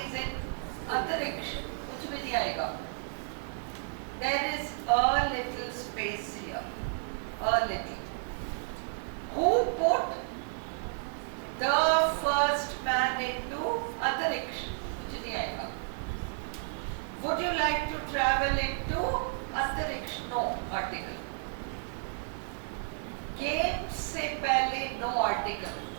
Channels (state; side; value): silent; left; 56 dB below the other